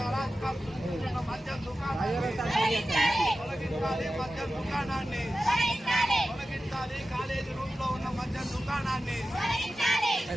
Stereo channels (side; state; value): both; normal; correlation 0.94